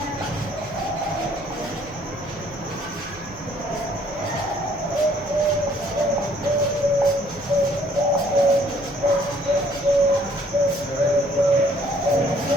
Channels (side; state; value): right; noise; hum, 22 dB below the sound